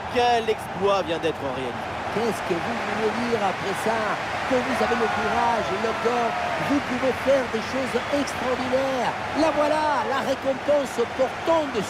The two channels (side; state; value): both; identical; correlation 1.00